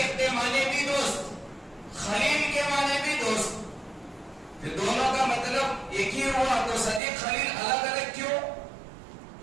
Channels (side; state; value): left; drops out; at 7.0 s